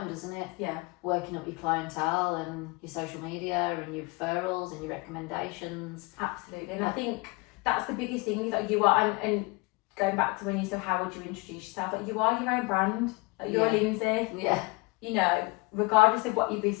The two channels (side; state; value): right; quieter; 25.7 dB